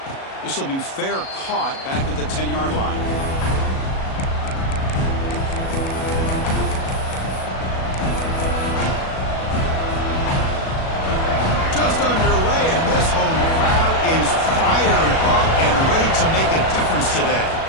This will be fair caught back at the 10-yard line. Just underway, and this home crowd is fired up and ready to make a difference today.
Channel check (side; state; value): right; late; 37 ms